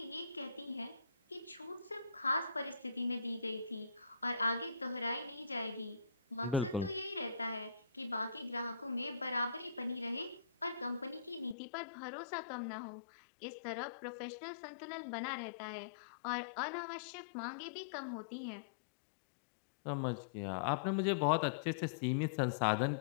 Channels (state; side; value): drops out; right; at 11.6 s